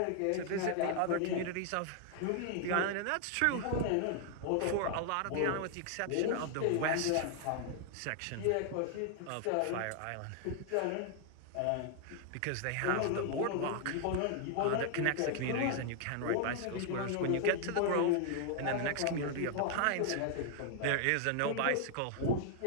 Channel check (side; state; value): both; different; correlation 0.00